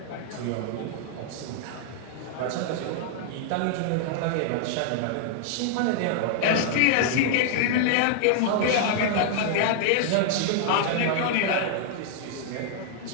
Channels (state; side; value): different; both; correlation -0.01